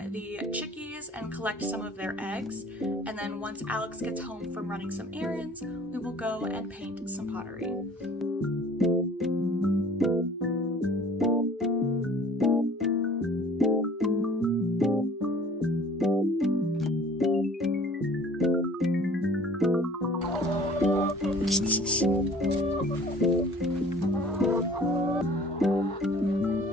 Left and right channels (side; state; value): both; normal; correlation 0.50